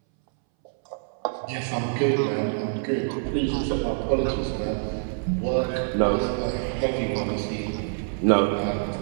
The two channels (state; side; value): silent; left; 61 dB below the other